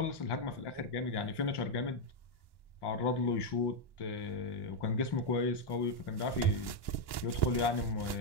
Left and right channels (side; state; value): right; late; 1.1 ms